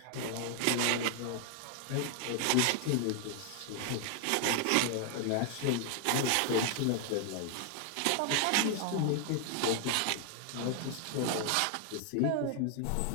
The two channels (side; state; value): both; different; correlation 0.00